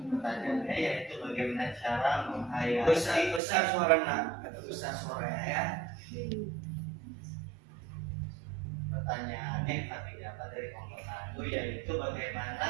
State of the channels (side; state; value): left; drops out; at 3.4 s